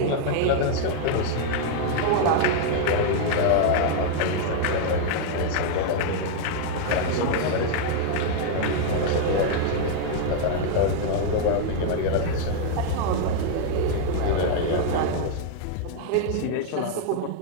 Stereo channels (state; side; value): different; both; correlation 0.00